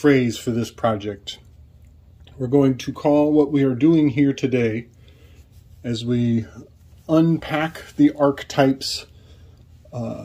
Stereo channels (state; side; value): identical; both; correlation 1.00